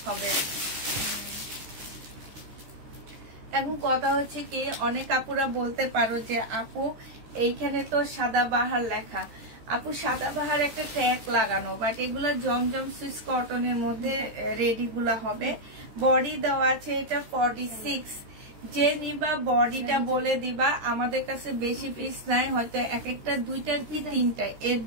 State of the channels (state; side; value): late; left; 14 ms